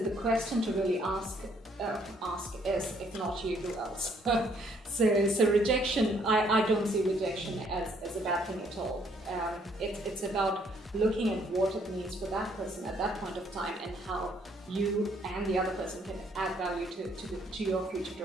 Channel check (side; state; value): both; normal; correlation 0.66